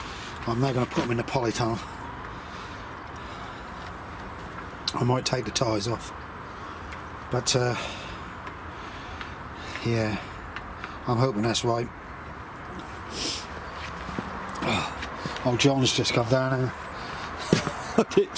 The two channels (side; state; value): both; identical; correlation 1.00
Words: I'm now going to put them in the polytunnel. I might take the ties off, but yeah, I'm hoping that's right. Oh, John's just come down here. I didn't